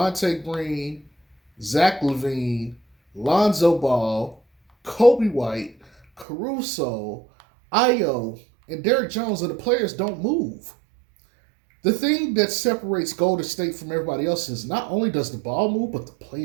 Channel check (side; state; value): left; drops out; at 6.2 s